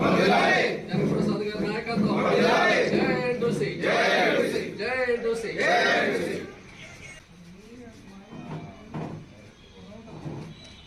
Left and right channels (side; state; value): both; identical; correlation 1.00